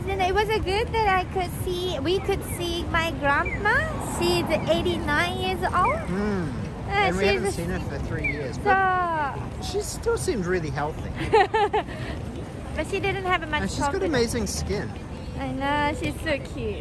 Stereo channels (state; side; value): identical; both; correlation 1.00